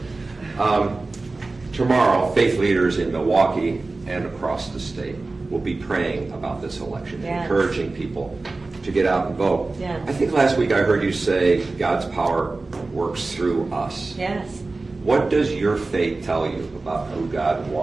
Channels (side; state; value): left; quieter; 3.4 dB